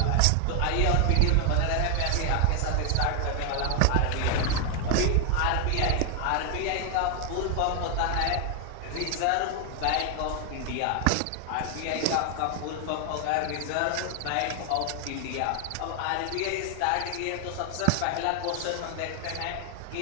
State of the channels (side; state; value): both; different; correlation 0.00